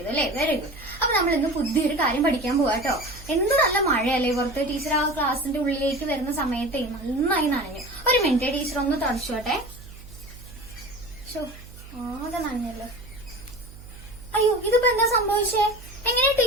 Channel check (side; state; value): right; noise; hum, 17 dB below the sound